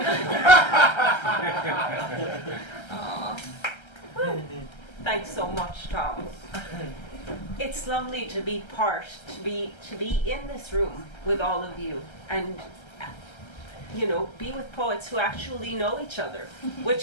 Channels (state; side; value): late; right; 1.3 ms